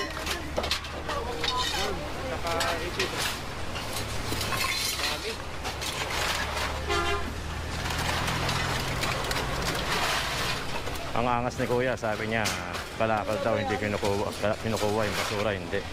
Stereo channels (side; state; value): both; identical; correlation 1.00